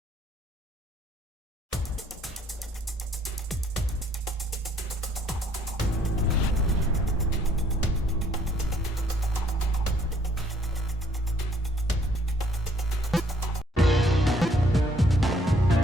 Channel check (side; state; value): both; normal; correlation 0.64